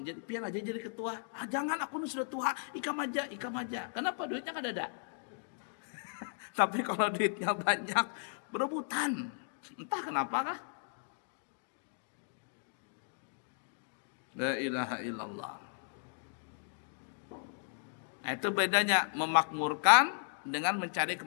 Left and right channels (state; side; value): silent; right; digital silence